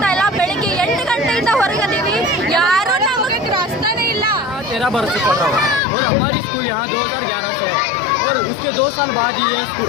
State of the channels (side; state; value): right; drops out; at 5.8 s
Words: ಇಲ್ಲ. ಬೆಳಿಗ್ಗೆ 8 ಗಂಟೆಯಿಂದ ಹೊರಗಿದ್ದೀವಿ, ಯಾರು ನಮಗೆ ರಾಸ್ತಾನೇ ಇಲ್ಲ. 13 बरस से पढ़ रहा हूँ और हमारी स्कूल यहाँ 2011 से है और उसके 2 साल बाद ये